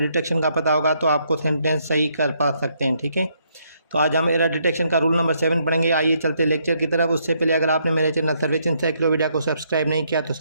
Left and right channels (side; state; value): both; inverted; correlation -0.73